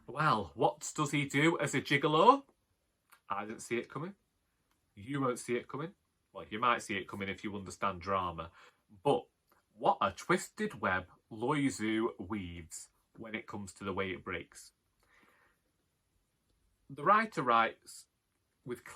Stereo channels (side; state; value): both; identical; correlation 1.00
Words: Well, what does he do as a gigolo? I didn't see it coming. You won't see it coming. Well, you might see it coming if you understand drama. But what a twisted web Loizou weaves when it comes to The Way It Breaks. The writer writes with